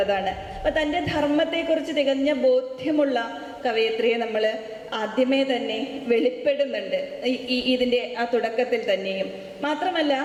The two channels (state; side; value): identical; both; correlation 1.00